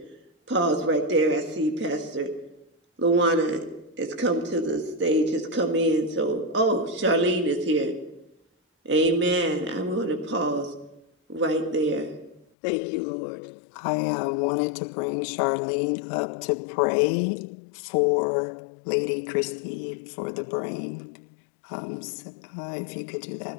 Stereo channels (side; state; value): right; drops out; at 12.5 s